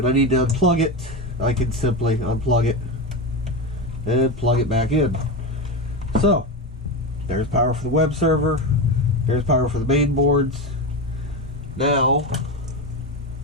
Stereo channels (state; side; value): normal; both; correlation 0.17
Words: I need to unplug it, I can simply unplug it and plug it back in. So there's power for the web server, there's power for the main boards. Now